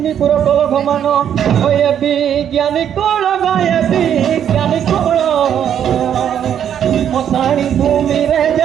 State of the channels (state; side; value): quieter; left; 9.3 dB